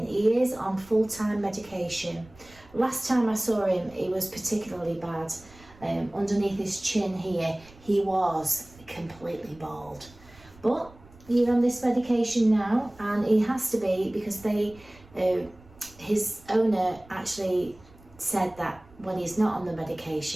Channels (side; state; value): right; noise; rumble, 24 dB below the sound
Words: He is on full-time medication. Last time I saw him, he was particularly bad. Underneath his chin here, he was completely bald. But he's on this medication now, and he has to be because his owner actually said that when he's not on the